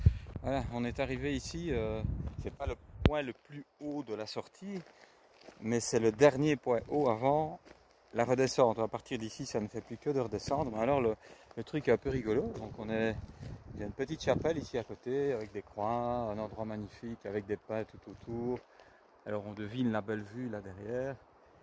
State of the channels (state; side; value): identical; both; correlation 1.00